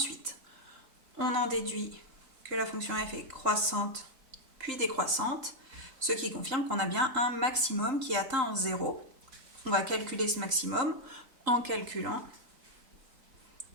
On en déduit que la fonction f est croissante puis décroissante, ce qui confirme qu'on a bien un maximum qui est atteint en 0. On va calculer ce maximum en calculant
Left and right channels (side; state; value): left; late; 3.8 ms